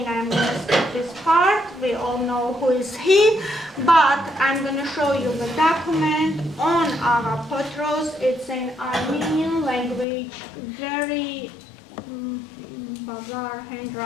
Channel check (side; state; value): right; drops out; at 10.1 s